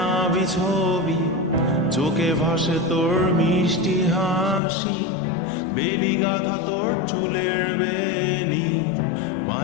ছবি, চোখে ভাসে তোর মিষ্টি হাসি, বেলি গাথা তোর চুলের বেনি,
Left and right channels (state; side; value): drops out; right; at 4.6 s